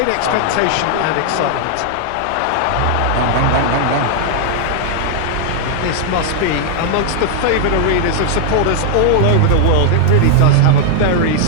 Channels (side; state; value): both; different; correlation 0.00